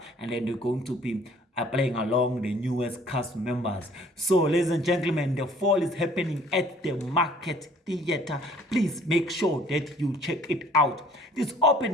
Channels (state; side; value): normal; both; correlation 0.55